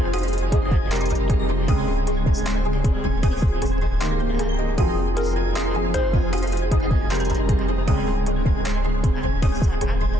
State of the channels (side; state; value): both; normal; correlation 0.74